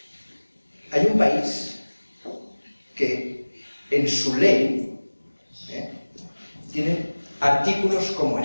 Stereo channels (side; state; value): both; inverted; correlation -1.00